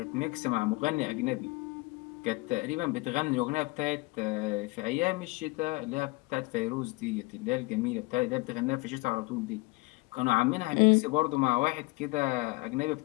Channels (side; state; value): right; quieter; 24.1 dB